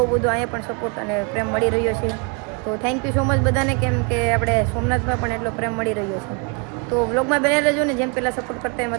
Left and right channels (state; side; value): quieter; left; 33.6 dB